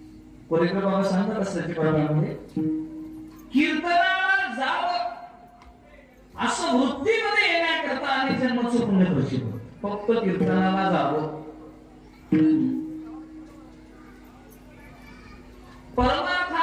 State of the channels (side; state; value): both; identical; correlation 1.00